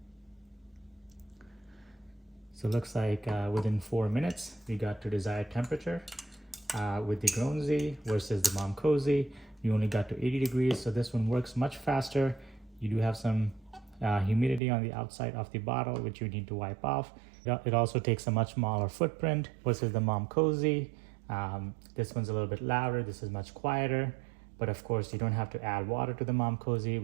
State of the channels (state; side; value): drops out; left; at 14.6 s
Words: So it looks like within 4 minutes, we got to desired temperature. With the Grownsy versus the Momcozy, you only got to 80 degrees. So this one works much faster. You do have some humidity on the outside of the bottle, which you need to wipe off. It also takes a much smaller footprint versus the Momcozy. This one's a little bit louder. This is much quieter. But of course, you don't have to add water to the Momcozy,